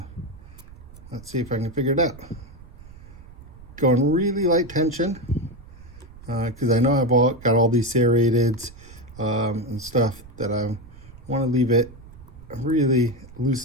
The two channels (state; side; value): noise; right; rumble, 19 dB below the sound